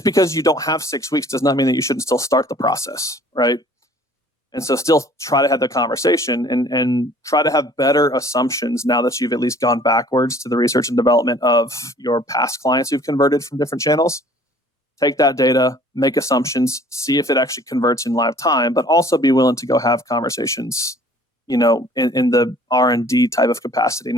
because you don't have 6 weeks does not mean that you shouldn't still start the process, right? And so still try to have the conversation and try to have better assumptions now that you've at least gone backwards to the research and development of your past clients who've converted from different channels, take that data, make assumptions, see if it actually converts in live time, but also be willing to go have conversations, in the R&D type of capacity,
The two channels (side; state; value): both; normal; correlation 0.53